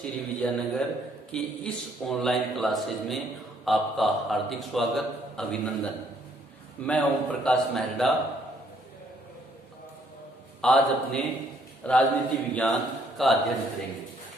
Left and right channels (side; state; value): both; normal; correlation 0.67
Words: Vijaynagar की इस ऑनलाइन क्लासेज में आपका हार्दिक स्वागत, अभिनंदन। मैं ओम प्रकाश मेहरडा। आज अपने राजनीति विज्ञान का अध्ययन करेंगे।